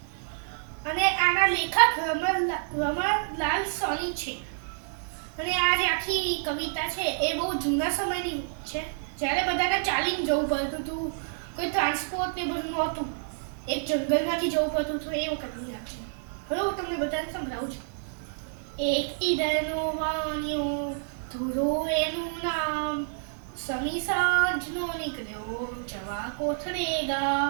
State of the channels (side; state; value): left; silent; 59 dB below the other